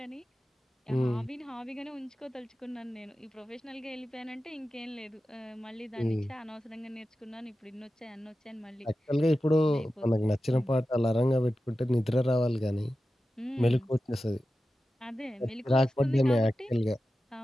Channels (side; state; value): both; normal; correlation 0.93